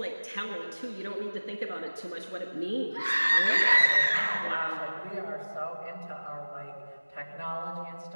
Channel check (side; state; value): both; inverted; correlation -1.00